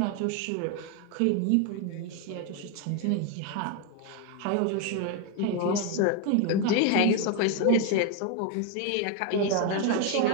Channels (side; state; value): both; different; correlation 0.01